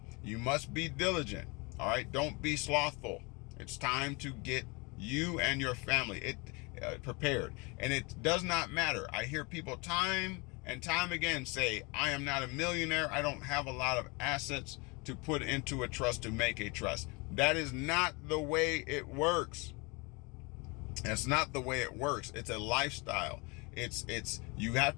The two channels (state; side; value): quieter; right; 28.4 dB